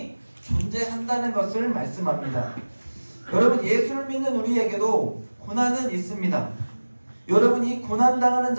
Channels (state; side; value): inverted; both; correlation -1.00